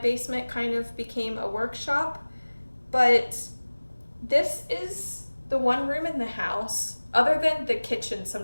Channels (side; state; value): both; inverted; correlation -1.00